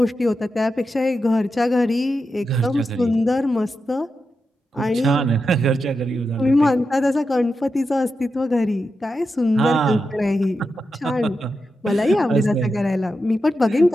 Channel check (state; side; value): normal; both; correlation 0.88